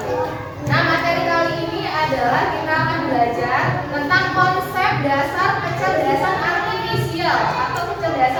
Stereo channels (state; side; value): identical; both; correlation 1.00